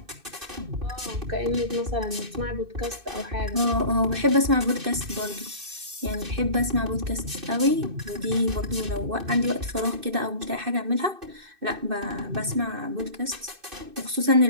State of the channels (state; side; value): late; left; 2.6 ms